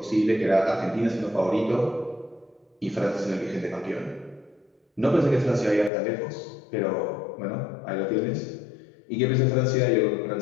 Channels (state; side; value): drops out; right; at 5.9 s